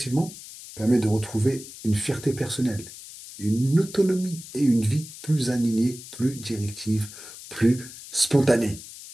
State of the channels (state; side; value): noise; left; hiss, 15 dB below the sound